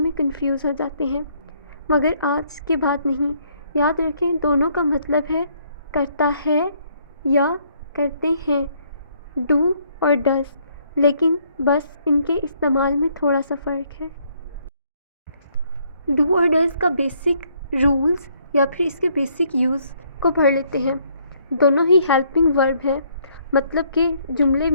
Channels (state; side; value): inverted; both; correlation -0.67